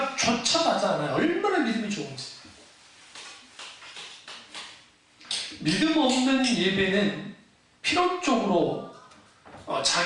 하지 않아요. 얼마나 믿음이 좋은지. 믿음 없는 예배는 필연적으로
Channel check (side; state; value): both; identical; correlation 1.00